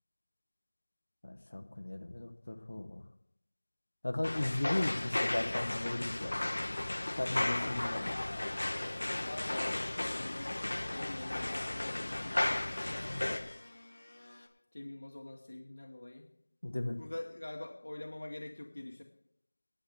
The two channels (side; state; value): both; inverted; correlation -1.00